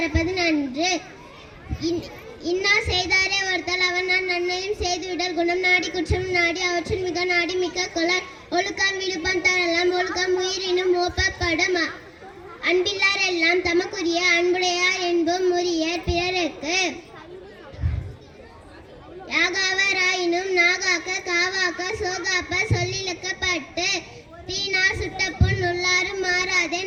நன்று. இன்னா செய்தாரே ஒருத்தல் அவன் நான் நன்மையும் செய்துவிடல். குணம் நாடி குற்றம் நாடி அவற்றில் மிக நாடி மிக்க கொளர். ஒழுக்கம் விழுப்பம் தரலாம் ஒழுக்கம் உயிரினும் ஓப்பப்படும். அன்பில்லார் எல்லாம் தமக்குரிய அன்புடையார் என்பும் முறியர் பிறருக்கு. யாகாவராயினும் நாகாக்க காவாக்க சோகாப்ப சொல்லிழக்கப்பட்டு. தீனார் சுட்டப்புண் உள்ளாரும் மாறாதே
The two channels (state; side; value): identical; both; correlation 1.00